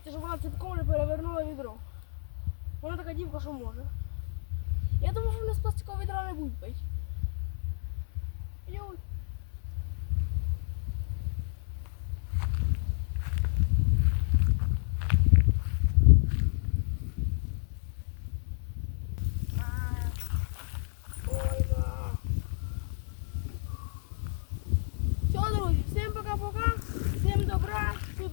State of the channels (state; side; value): silent; right; 57 dB below the other